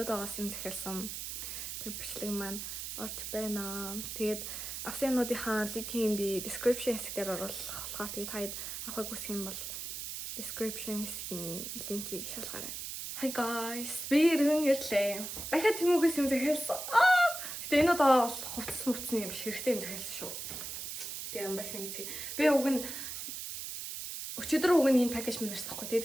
юм захиалсан тэр бичлэг маань орж байна. Тэгээд авсан юмнуудынхаа линкийг би description хэсгээр оруулах болохоор тэгээд таад авахыг хүсэх юм бол description хэсгийн линкийг шалгаарай. Hi guys, би иргэн ирлээ. Дахиад Темугээс юм захиалсан. Гэтэ энэ удаа бол хувцсны юм биш, хэрэгтэй юм захиалсан шүү. Тэгээ юм байсан гэсэн. Би уг нь өчигдөр уг нь энэ пакэж минь ирсэн байхгүй.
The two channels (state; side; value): noise; right; hiss, 6 dB below the sound